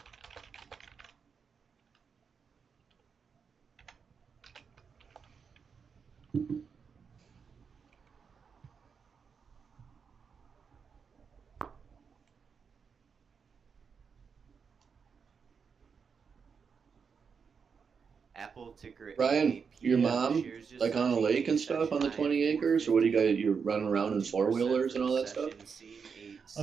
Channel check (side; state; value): left; quieter; 6.0 dB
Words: Apple ticker Ryan, your AAP mom, shares just like on a lake and stuff on the 20 acres, or what do you got? You're running around in 4-wheelers and all that stuff?